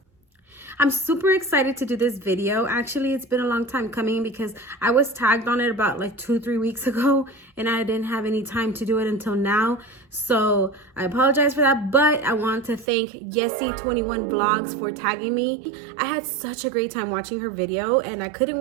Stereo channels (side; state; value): left; drops out; at 12.9 s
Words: I'm super excited to do this video. Actually, it's been a long time coming because I was tagged on it about like 2-3 weeks ago and I didn't have any time to do it until now. So I apologize for that, but I want to thank YESSIII21 VLOGS for tagging me. I had such a great time watching her video and I couldn't